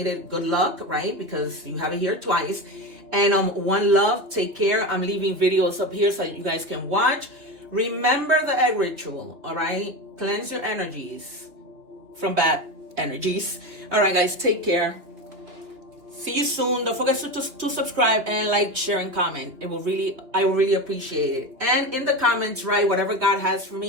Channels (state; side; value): late; left; 3.0 ms